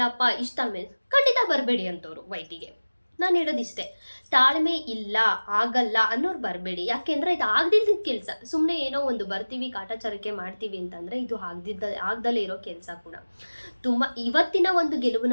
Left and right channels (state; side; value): inverted; both; correlation -1.00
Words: ಇಷ್ಟು ತಾಳ್ಮೆ ಖಂಡಿತ ಬರಬೇಡಿ ಅಂತವ್ರು ವೈಟಿಗೆ. ನಾನು ಹೇಳೋದಿಷ್ಟೇ, ತಾಳ್ಮೆ ಇಲ್ಲ ಆಗಲ್ಲ ಅನ್ನೋರು ಬರಬೇಡಿ. ಯಾಕೆಂದರೆ ಇದು ಆಗದಿದ್ದ ಕೆಲಸ. ಸುಮ್ಮನೆ ಏನೋ ಒಂದು ಬರ್ತೀವಿ ಕಾಟಾಚಾರಕ್ಕೆ ಮಾಡ್ತೀವಿ ಅಂತಂದರೆ ಇದು ಆಗದಲ್ಲೇ ಇರೋ ಕೆಲಸ ಕೂಡ. ತುಂಬ ಇವತ್ತಿನ ಒಂದು